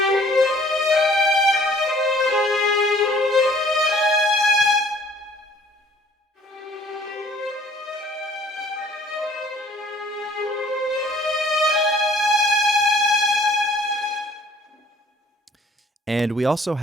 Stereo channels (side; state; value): both; normal; correlation 0.57